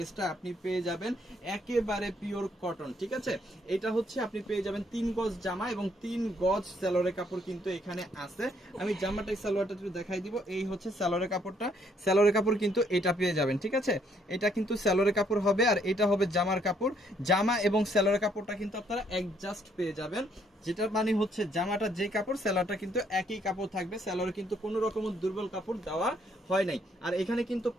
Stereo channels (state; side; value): normal; both; correlation 0.69